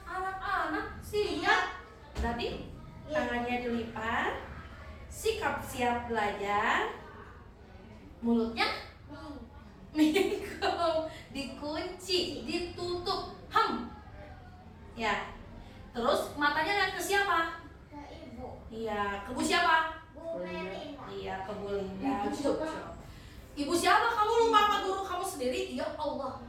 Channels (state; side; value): identical; both; correlation 1.00